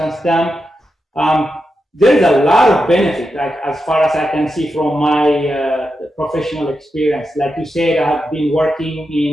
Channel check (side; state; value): both; normal; correlation 0.88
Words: Dam. There's a lot of benefit, like, as far as I can see from my professional experience. Like you said, I have been working